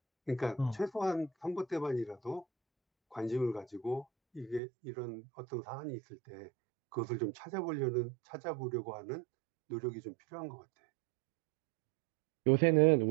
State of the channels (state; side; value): drops out; left; at 4.6 s